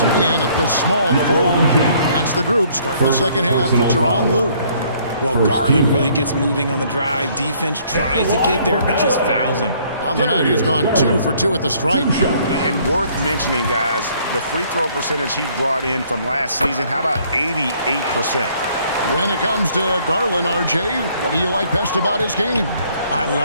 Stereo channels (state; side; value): inverted; both; correlation -0.62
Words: in at the small 4. That's the group starting the second half for Tyronn Lue. Well, Garland really gets moving on the drive. Defense tries to get there, but just fouls him. On the night, he's gone 2 for 2 at the stripe. And worth mentioning, guys, the free throw percentage he brought in from last season, how about 88%? When it comes to Garland, RJ, what do you like best about his game? I